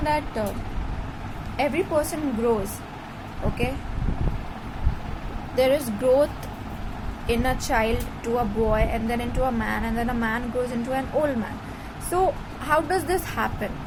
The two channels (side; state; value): both; identical; correlation 1.00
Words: that every person grows, okay? There is growth in a child to a boy, and then into a man, and then a man grows into an old man. So how does this happen?